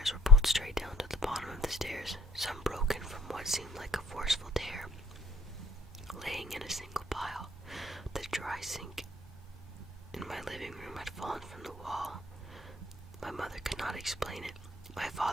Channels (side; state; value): both; normal; correlation 0.55